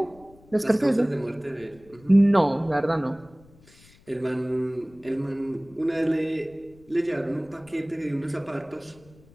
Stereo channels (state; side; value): noise; left; rumble, 26 dB below the sound